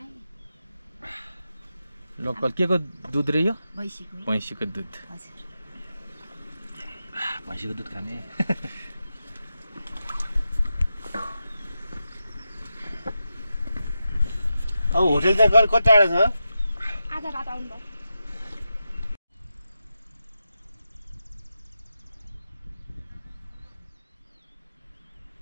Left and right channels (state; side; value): inverted; both; correlation -0.89